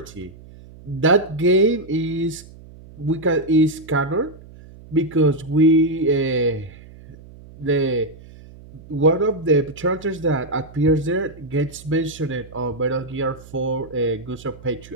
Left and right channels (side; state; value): right; noise; hum, 20 dB below the sound